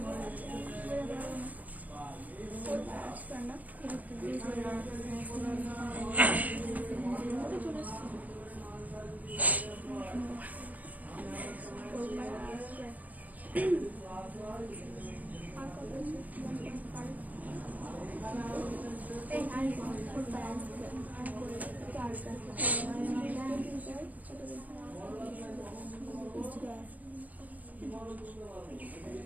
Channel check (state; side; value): late; left; 0.078 ms